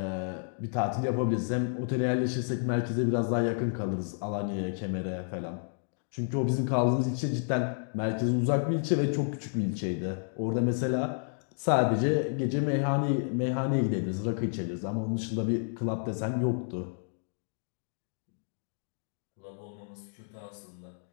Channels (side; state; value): right; silent; digital silence